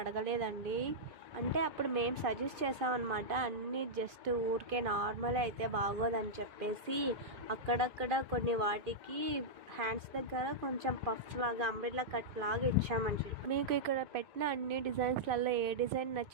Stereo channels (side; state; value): left; late; 2.5 ms